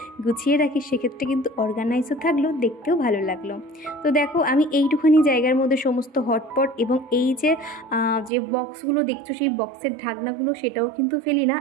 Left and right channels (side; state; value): left; drops out; at 8.3 s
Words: গুছিয়ে রাখি, সেক্ষেত্রে কিন্তু অর্গানাইজও থাকলো, দেখতে দেখতেও ভালো লাগলো। তো দেখো আমি এইটুখানি জায়গার মধ্যে সমস্ত হটপট এবং এই যে বক্সগুলো দেখছো সেই বক্সের ঢাকনাগুলো সেটাও কিন্তু ফেলি না।